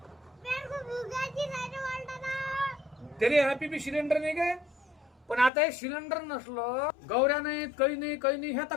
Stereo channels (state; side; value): drops out; right; at 5.5 s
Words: पेट को भुगाची नाही रे वालताना. तरी हॅपी बी सिलेंडर नाही काय. पण आता हे सिलेंडर नसलं गौऱ्या नाहीत काही नाही हे आता